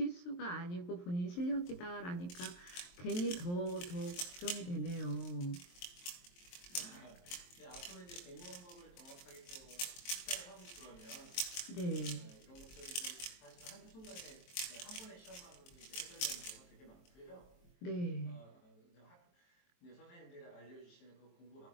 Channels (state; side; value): late; right; 23 ms